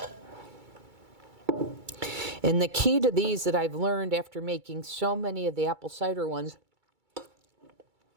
And the key to these that I've learned after making so many of the apple cider ones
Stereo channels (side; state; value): left; late; 2.3 ms